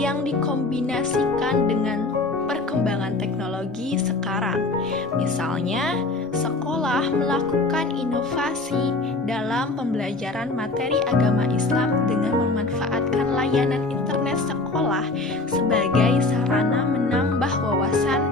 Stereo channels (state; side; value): quieter; right; 3.2 dB